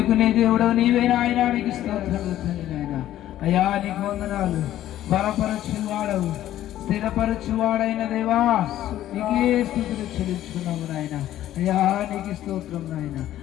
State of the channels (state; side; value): quieter; right; 13.0 dB